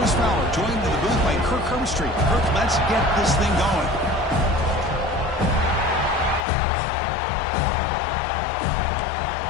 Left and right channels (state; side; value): drops out; right; at 6.5 s